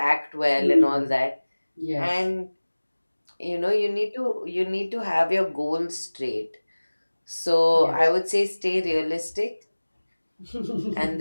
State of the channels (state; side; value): inverted; both; correlation -1.00